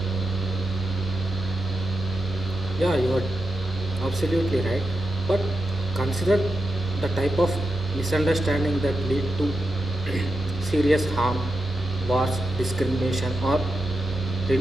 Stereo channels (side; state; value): both; normal; correlation 0.87